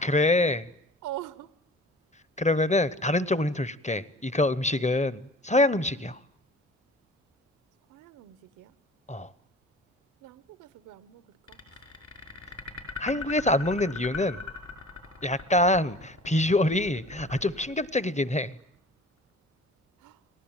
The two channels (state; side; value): normal; both; correlation 0.44